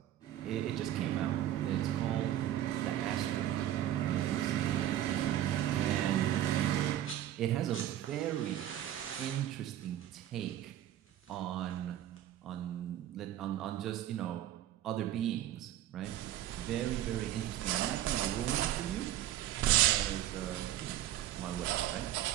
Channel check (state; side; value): quieter; left; 12.5 dB